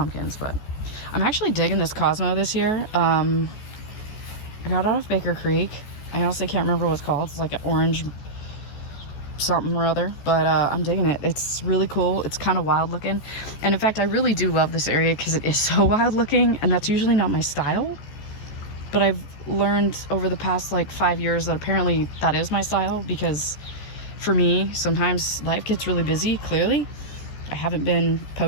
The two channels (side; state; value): right; late; 14 ms